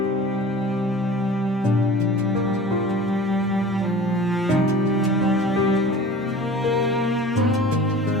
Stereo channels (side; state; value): both; normal; correlation 0.41